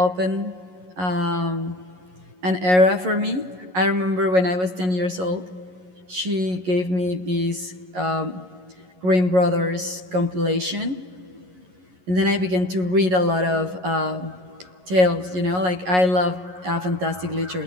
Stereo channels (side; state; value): left; late; 11 ms